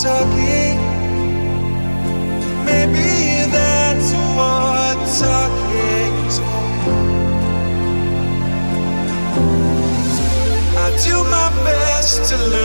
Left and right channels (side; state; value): both; inverted; correlation -1.00